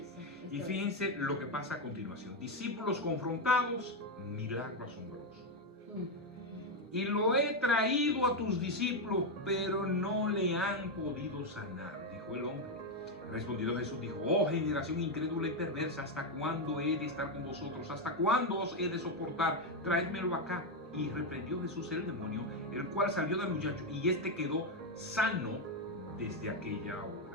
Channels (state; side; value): normal; both; correlation 0.05